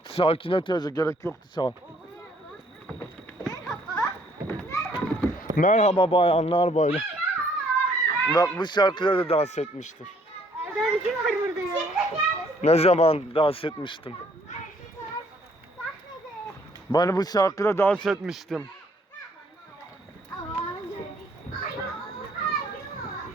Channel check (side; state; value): both; normal; correlation 0.63